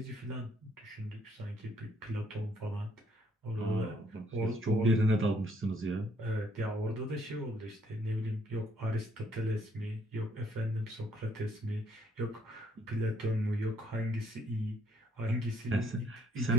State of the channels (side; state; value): both; normal; correlation 0.67